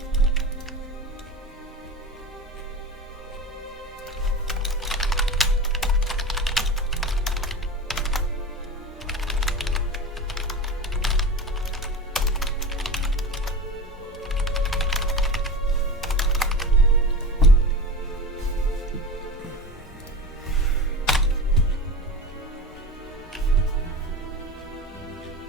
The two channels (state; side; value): normal; both; correlation 0.29